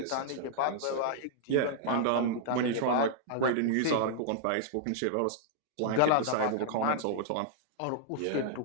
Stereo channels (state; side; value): different; both; correlation -0.01